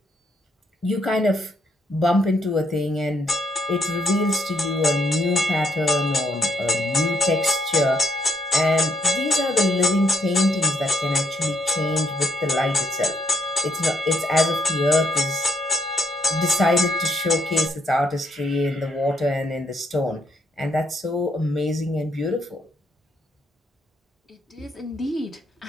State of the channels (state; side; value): normal; both; correlation 0.73